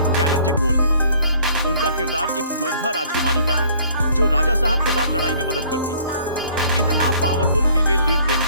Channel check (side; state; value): both; inverted; correlation -0.58